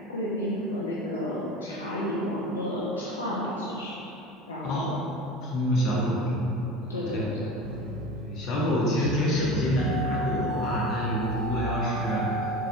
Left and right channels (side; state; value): both; normal; correlation 0.33